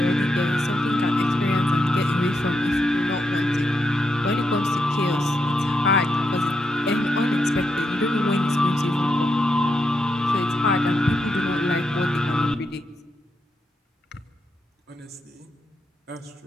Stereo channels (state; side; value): normal; both; correlation 0.82